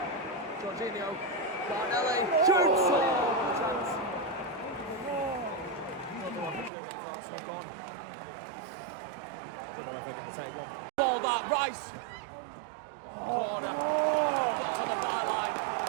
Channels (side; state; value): left; drops out; at 6.7 s